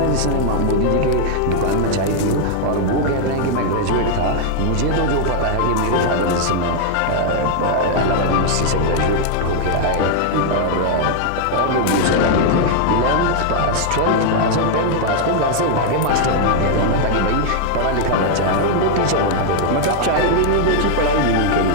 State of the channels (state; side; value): different; both; correlation 0.00